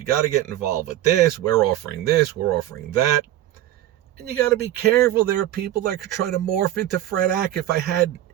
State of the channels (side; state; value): left; quieter; 13.3 dB